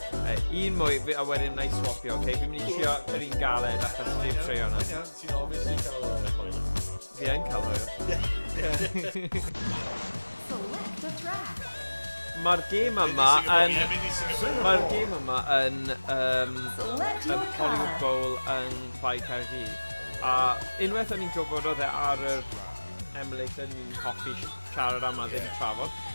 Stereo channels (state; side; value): inverted; both; correlation -1.00